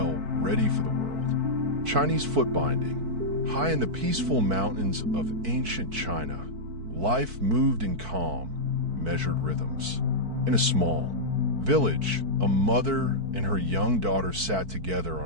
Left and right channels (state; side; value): late; left; 4.5 ms